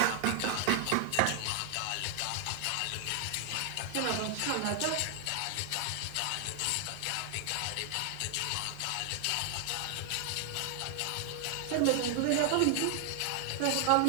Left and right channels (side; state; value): both; different; correlation 0.00